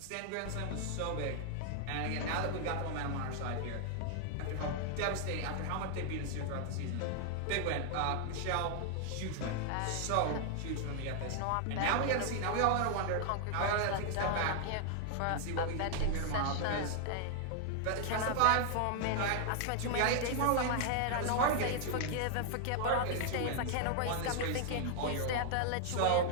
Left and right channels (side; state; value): both; different; correlation 0.00